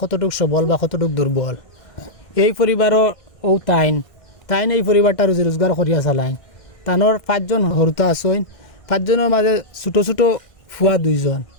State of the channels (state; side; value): late; right; 1.6 ms